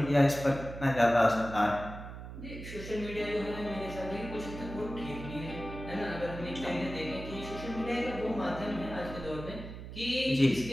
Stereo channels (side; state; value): right; noise; hum, 11 dB below the sound